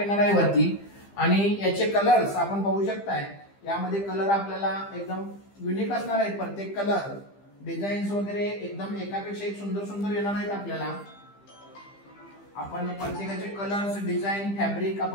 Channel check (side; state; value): right; late; 15 ms